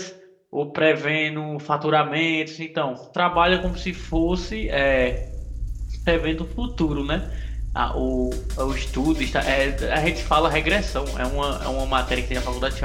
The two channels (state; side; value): identical; both; correlation 1.00